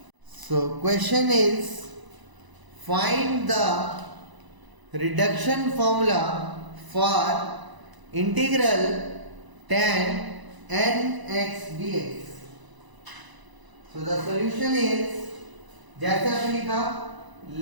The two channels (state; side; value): late; left; 1.0 ms